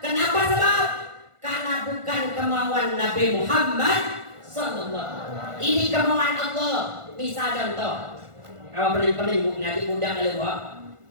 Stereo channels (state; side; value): late; left; 1.5 ms